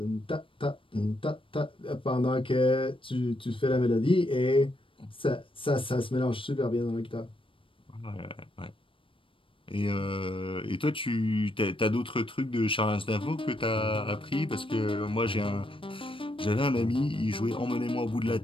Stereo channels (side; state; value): right; late; 0.25 ms